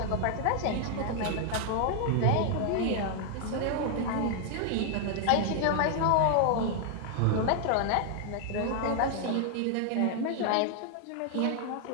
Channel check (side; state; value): both; different; correlation 0.00